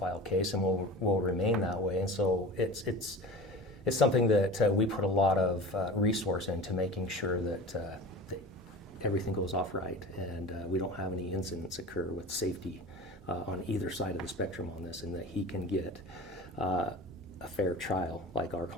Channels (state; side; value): normal; both; correlation 0.35